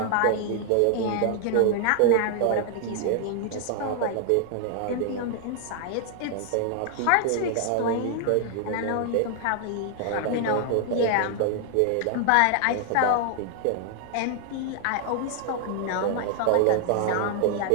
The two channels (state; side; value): different; both; correlation 0.00